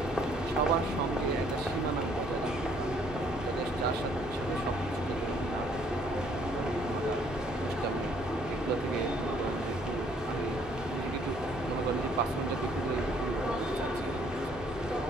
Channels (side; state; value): both; normal; correlation 0.63